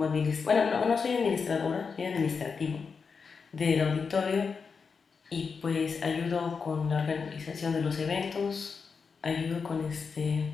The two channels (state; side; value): quieter; right; 5.4 dB